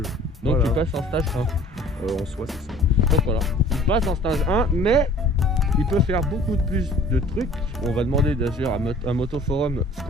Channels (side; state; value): both; normal; correlation 0.50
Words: Donc Voilà. il passe en stage 1. En soi c'est ça. Donc voilà, il passe en stage 1, mais il peut faire beaucoup plus de trucs. On va demander d'ailleurs à Motoforum ce